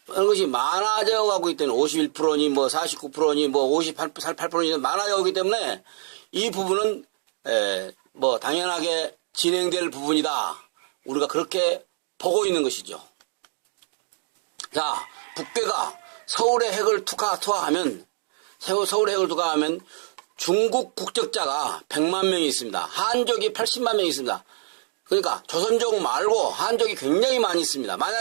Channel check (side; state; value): left; silent; digital silence